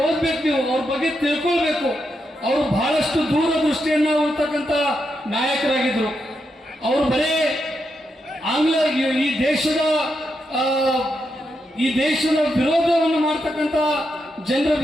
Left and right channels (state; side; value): normal; both; correlation 0.84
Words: ಓದ್ಬೇಕು, ನೀವು ಅವ್ರ ಬಗ್ಗೆ ತಿಳ್ಕೊಳ್ಬೇಕು. ಅವರು ಬಹಳಷ್ಟು ದೂರದೃಷ್ಟಿಯನ್ನ ಇರ್ತಕ್ಕಂಥ ನಾಯಕರಾಗಿದ್ರು. ಅವರು ಬರೇ ಆಂಗ್ಲ ಈ ದೇಶದ ವಿರೋಧವನ್ನು ಮಾಡ್ತಕ್ಕಂಥ ಜನರ